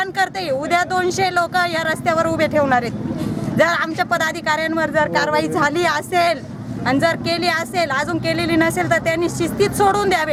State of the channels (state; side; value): identical; both; correlation 1.00